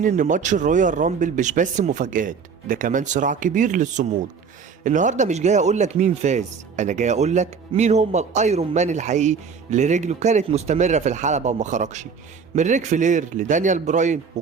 ان ماتش الرويال رامبل مش بس مفاجآت، ده كمان صراع كبير للصمود. النهارده مش جاي اقولك مين فاز، انا جاي اقولك مين هما الايرون مان الحقيقي اللي رجله كانت مستمرة في الحلبة وما خرجش. من ريك فلير لدانيال براين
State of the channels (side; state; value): left; quieter; 5.8 dB